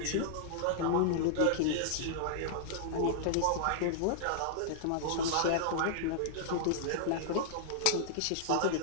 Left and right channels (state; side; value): different; both; correlation -0.01